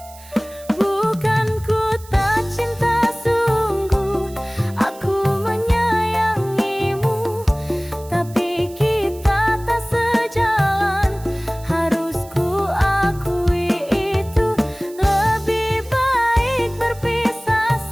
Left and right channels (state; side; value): noise; right; hiss, 21 dB below the sound